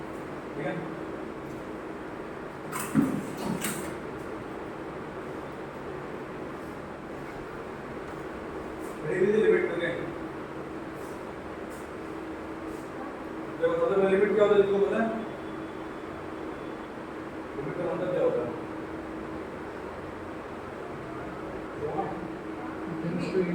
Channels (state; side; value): identical; both; correlation 1.00